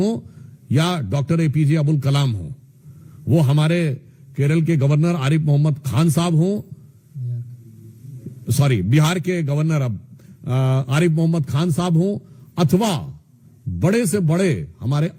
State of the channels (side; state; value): both; identical; correlation 1.00